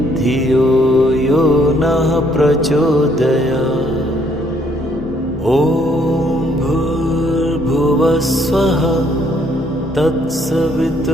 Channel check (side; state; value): both; normal; correlation 0.67